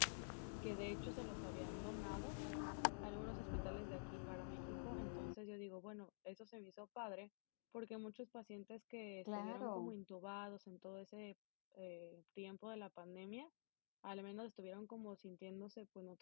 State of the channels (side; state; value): right; silent; digital silence